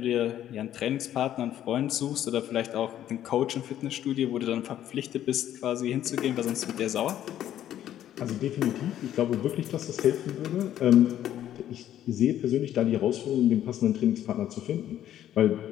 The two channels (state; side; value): quieter; right; 11.5 dB